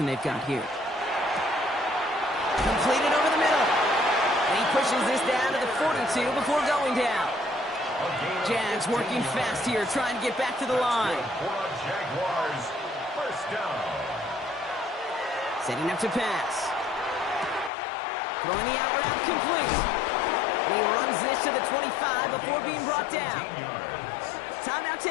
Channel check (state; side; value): drops out; right; at 17.7 s